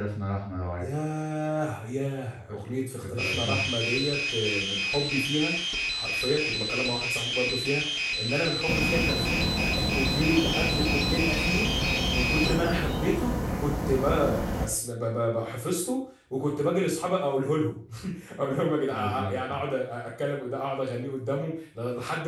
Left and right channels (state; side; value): identical; both; correlation 1.00